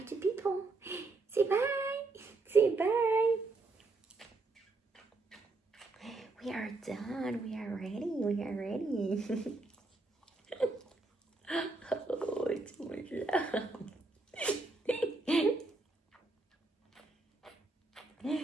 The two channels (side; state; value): left; quieter; 3.4 dB